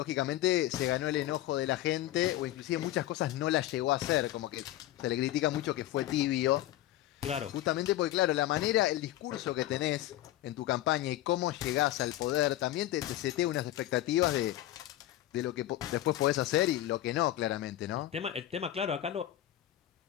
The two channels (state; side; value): quieter; right; 14.2 dB